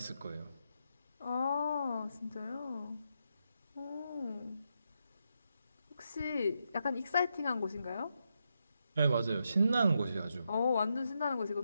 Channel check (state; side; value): inverted; both; correlation -0.83